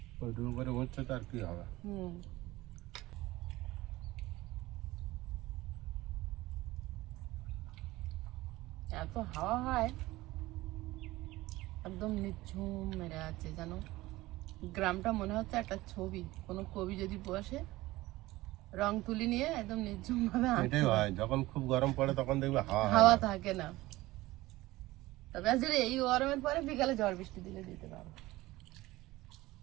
ওইটুকু করে উচ্ছে তো আর কি হবে। এত হাওয়া হয়, একদম নিঝুম মেরে আছে জানো। গ্রামটা মনে হচ্ছে একটা ছবি, কোনো কবি যদি বসে রং তুলি নিয়ে একদম নিঝুম ভাবে এটাই হয়, যখন খুব গরম পড়ে তখন দেখবে হাওয়া থাকে না। তবে আজ এই গরমের পরে বিকালে ঝড় বৃষ্টি দিলে দিতে পারো।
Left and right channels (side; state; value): left; quieter; 18.5 dB